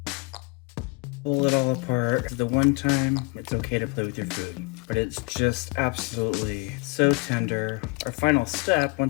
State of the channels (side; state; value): right; quieter; 27.7 dB